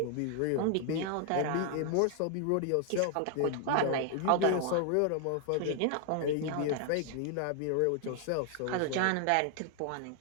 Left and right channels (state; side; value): different; both; correlation 0.00